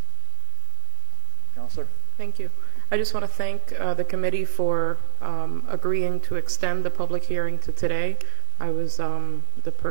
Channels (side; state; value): left; silent; 54 dB below the other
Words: Counselor? Thank you. I just want to thank the committee for agreeing to extend the public hearing to today. I was the